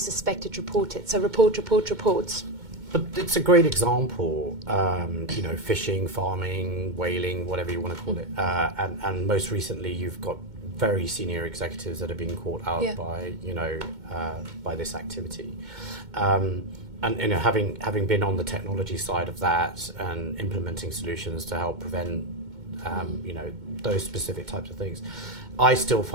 it, report it. So report. But it's a great example, fishing, farming, whaling, whatever you want to call it. And most recently you've got very senior executives that are being caught out Yeah. by, by this activity. And having been on the technology side of that and implementing solutions to help prevent, those specific types of things, I still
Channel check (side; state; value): left; late; 2.2 ms